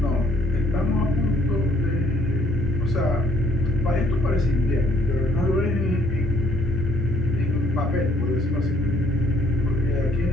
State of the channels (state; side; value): normal; both; correlation 0.65